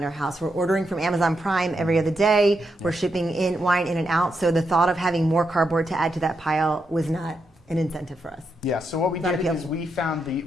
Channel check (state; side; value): normal; both; correlation 0.83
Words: our house. We're ordering from Amazon Prime every other day. We're shipping in wine in and out. So the thought of having more cardboard to add to that pile was not an incentive for us. Yeah. So what we did is we found